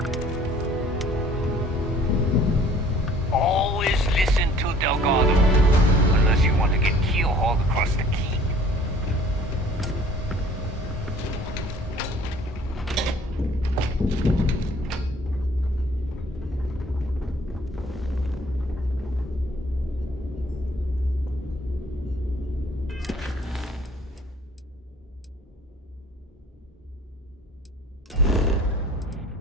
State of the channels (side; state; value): both; normal; correlation 0.53